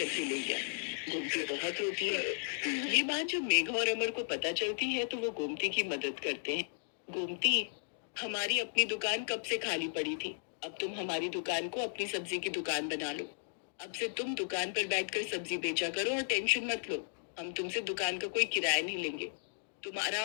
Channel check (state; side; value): silent; right; digital silence